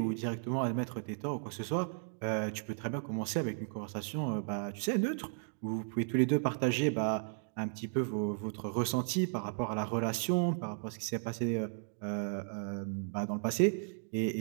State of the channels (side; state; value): left; silent; digital silence